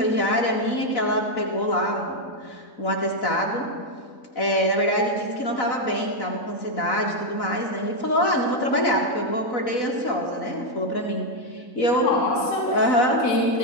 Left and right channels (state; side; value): late; right; 4.0 ms